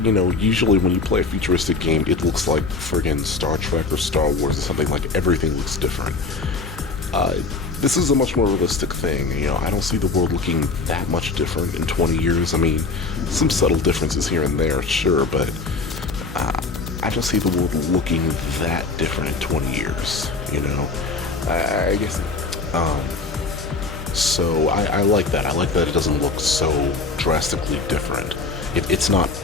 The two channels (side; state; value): right; quieter; 4.0 dB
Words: know, usually when you play a futuristic game, it looks like friggin' Star Trek or Star Wars or something. Like, everything looks different. This is a much more realistic thing. You know, I don't see the world looking that much different in 20 years. I mean, some subtle differences here and there, sure, but I don't see the world looking that different in 20 years, you know? I guess, so I like that. I like that it doesn't look so drastically different. It's not